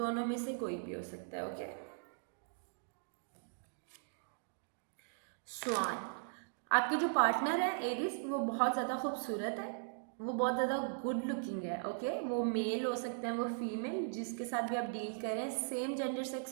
में से कोई भी हो सकता है. ओके, स्वान. आपके जो पार्टनर है एरीज, वो बहुत ज़्यादा खूबसूरत है, वो बहुत ज़्यादा गुड लुकिंग है. ओके, वो मेल हो सकते हैं, वो फीमेल, जिसके साथ भी आप डील करें, सेम जेंडर सेक्स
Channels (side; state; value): left; silent; digital silence